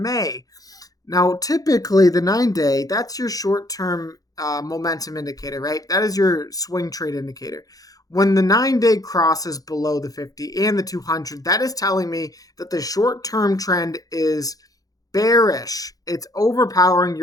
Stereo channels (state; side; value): late; right; 0.17 ms